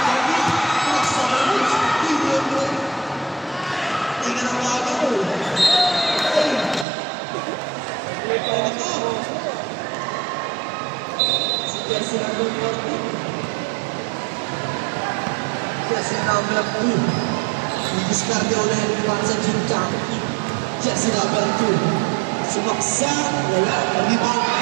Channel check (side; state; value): left; drops out; at 6.9 s